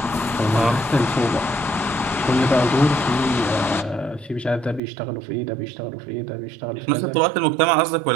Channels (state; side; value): drops out; left; at 4.8 s